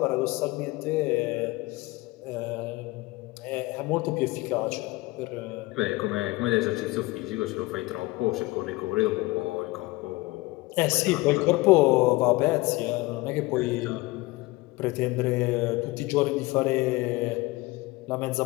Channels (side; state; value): right; quieter; 21.5 dB